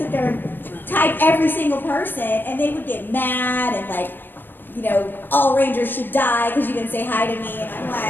there and type every single person, and they would get mad and like, you know, all Rangers should die because you didn't say hi to me, and I'm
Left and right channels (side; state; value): right; late; 0.095 ms